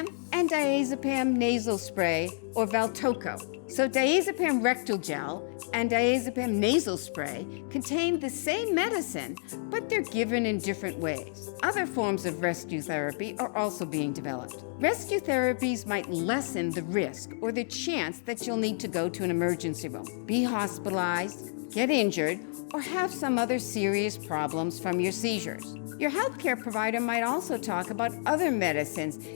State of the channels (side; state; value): right; silent; digital silence